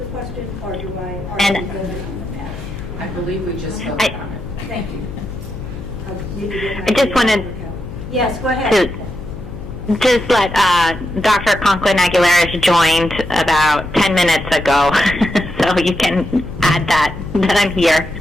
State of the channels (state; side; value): noise; left; hum, 13 dB below the sound